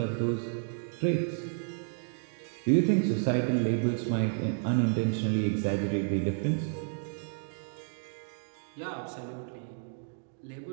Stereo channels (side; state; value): left; silent; digital silence